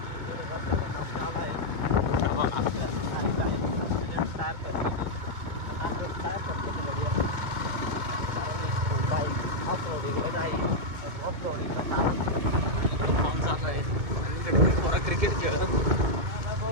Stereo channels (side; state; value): left; late; 2.2 ms